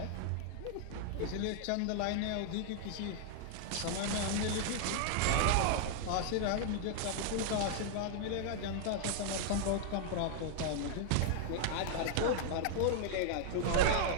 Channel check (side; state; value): both; different; correlation 0.00